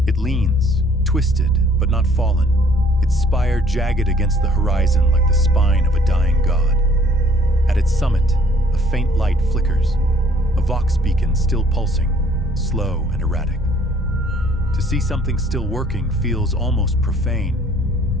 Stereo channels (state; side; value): normal; both; correlation 0.59